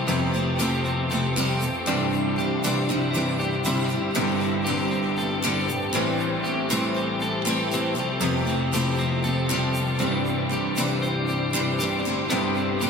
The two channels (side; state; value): right; noise; hum, 27 dB below the sound